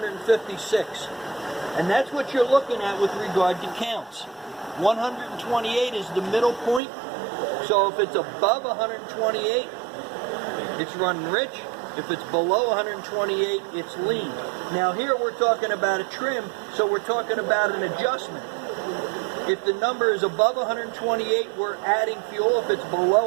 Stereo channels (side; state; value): left; drops out; at 6.8 s